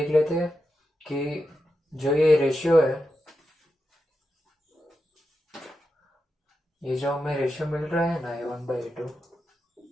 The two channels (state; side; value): normal; both; correlation 0.88